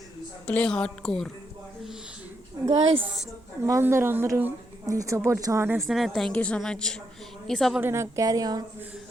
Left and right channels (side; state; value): right; noise; rumble, 29 dB below the sound